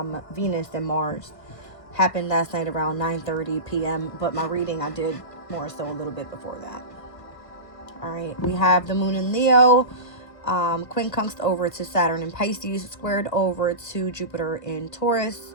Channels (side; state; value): right; late; 1.4 ms